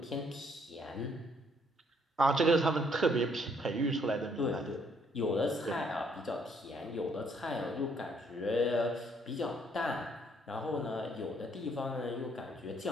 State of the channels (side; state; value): both; normal; correlation 0.67